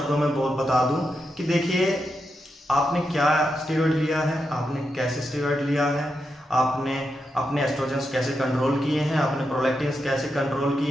में बता दूं कि देखिए, आपने क्या स्टेरॉइड लिया है, आपने कैसे स्टेरॉइड लिया है, आपने अपने एस्ट्रोजन्स कैसे कंट्रोल किए हैं, आपने प्रोलैक्टिन्स कैसे कंट्रोल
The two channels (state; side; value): normal; both; correlation 0.86